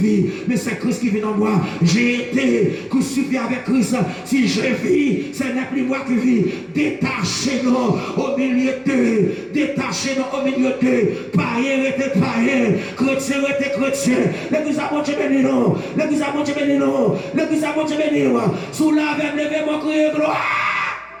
mais c'est Christ qui vit en moi. J'ai été crucifié avec Christ. Si je vis, ce n'est plus moi qui vis. Détachez-nous au milieu d'eux. Détachez-nous au milieu d'eux. Païen était païen. Chrétien était chrétien. L'église a bon Dieu béni nous. L'église a bon Dieu béni nous. L'église a bon Dieu béni nous. Sous la veine, levez-moi, criez gloire.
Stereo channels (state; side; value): identical; both; correlation 1.00